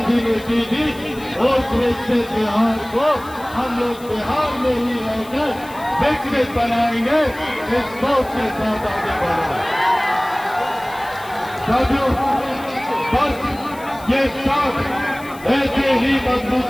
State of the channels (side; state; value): left; noise; hiss, 21 dB below the sound